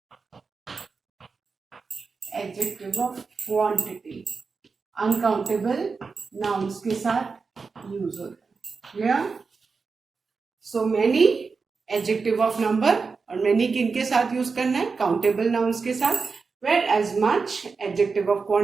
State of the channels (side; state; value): left; quieter; 4.7 dB